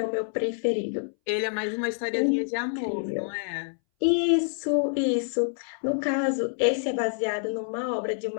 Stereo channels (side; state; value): right; silent; 60 dB below the other